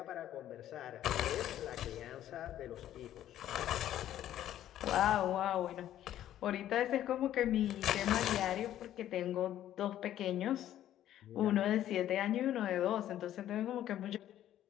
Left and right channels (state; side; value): quieter; right; 12.0 dB